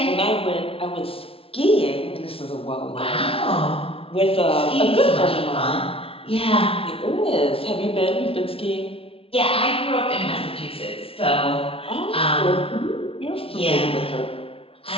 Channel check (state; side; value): late; right; 0.27 ms